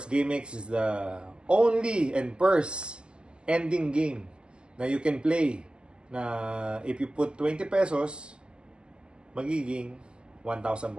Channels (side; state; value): left; late; 0.049 ms